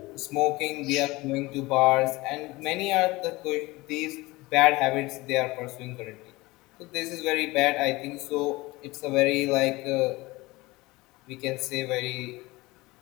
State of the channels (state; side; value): quieter; right; 21.3 dB